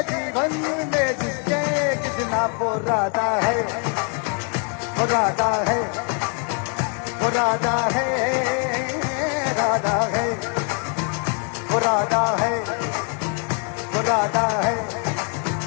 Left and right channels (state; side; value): quieter; right; 39.9 dB